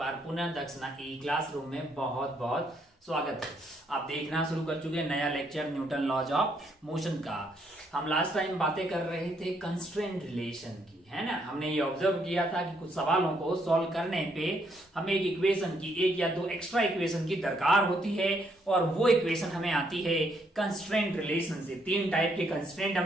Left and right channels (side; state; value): both; normal; correlation 0.72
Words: पुनः दक्षिणा ई क्लासरूम में बहुत बहुत स्वागत है। आप देखना शुरू कर चुके हैं नया lecture Newton laws of motion का। हम लास्ट टाइम बातें कर रहे थे कंस्ट्रेंट रिलेशन की, है ना। हमने ये ऑब्जर्व किया था कि कुछ सवालों को सॉल्व करने पे हमें एक इक्वेशन की, एक या दो एक्स्ट्रा इक्वेशन की दरकार होती है और वो इक्वेशन हमें आती है कंस्ट्रेंट रिलेशन से। तीन टाइप के कंस्ट्रेंट